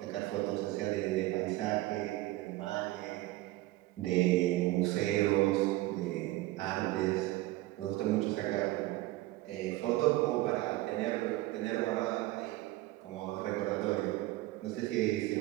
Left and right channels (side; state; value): left; quieter; 18.1 dB